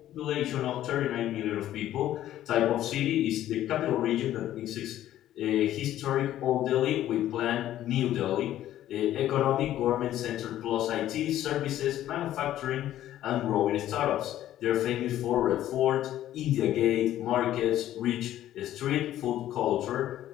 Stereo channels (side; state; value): right; quieter; 12.8 dB